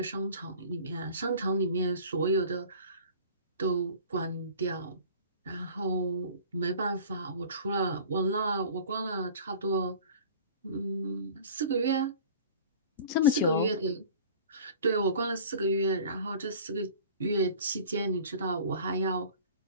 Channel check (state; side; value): inverted; both; correlation -0.44